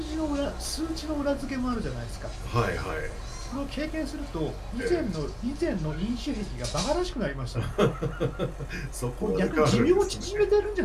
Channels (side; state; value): both; identical; correlation 1.00